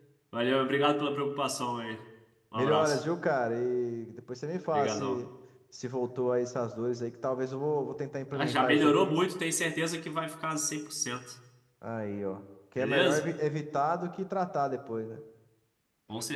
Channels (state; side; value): identical; both; correlation 1.00